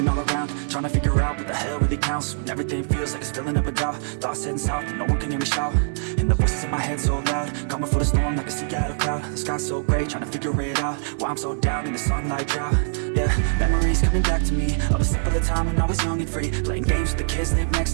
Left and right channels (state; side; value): silent; left; digital silence